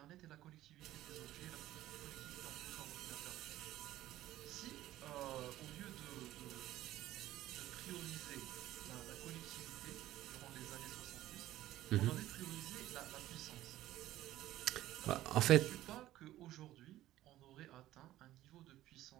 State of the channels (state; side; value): quieter; left; 14.6 dB